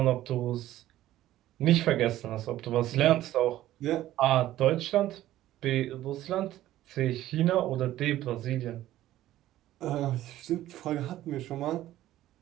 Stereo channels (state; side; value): quieter; left; 14.2 dB